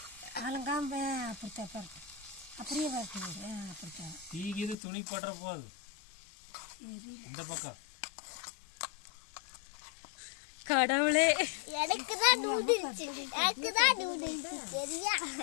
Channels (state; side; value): drops out; right; at 4.8 s